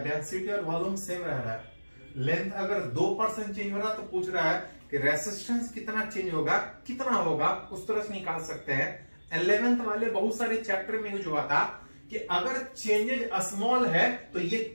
और वॉल्यूम सेम रह रहा है। लेंथ अगर 2% चेंज हो रहा तो पूछ रहा है कि रेसिस्टेंस कितना चेंज होगा, कितना होगा, उस तरह से निकाल सकते हैं। 11th वाले बहुत सारे चैप्टर में यूज हुआ था कि अगर चेंजेज स्मॉल है तो ये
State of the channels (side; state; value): both; inverted; correlation -1.00